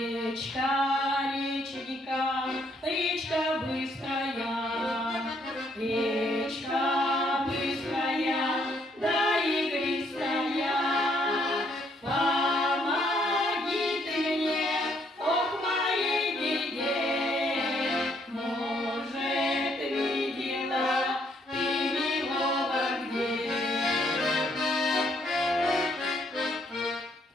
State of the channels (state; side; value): normal; both; correlation 0.70